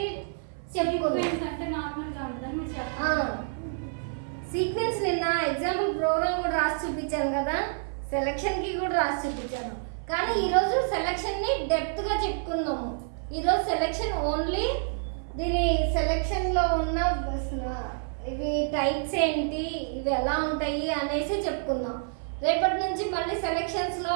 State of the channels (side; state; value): left; silent; 56 dB below the other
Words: చెప్పుకున్నాం. సీక్వెన్స్ నిన్న ఎగ్జాంపుల్ ప్రోగ్రామ్ కూడా రాసి చూపించాను కదా, సెలక్షన్కి కూడా రాసి చూపించాను. కానీ ఈరోజు సెలక్షన్ని డెప్త్గా చెప్పుకున్నాము. ఈరోజు సెలక్షన్ ఓన్లీ దీని సెలక్షన్లో ఉన్న ఇవి టైప్స్ ఏంటి, ఇవి ఎలా ఉంటాయి అనేసి చెప్పుకుందాం. రేపటి నుంచి మళ్ళీ సెలక్షన్స్లో